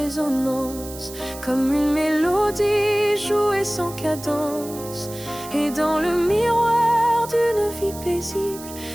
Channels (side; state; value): right; noise; hiss, 14 dB below the sound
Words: comme une mélodie jouée sans cadence. Et dans le miroir d'une vie paisible,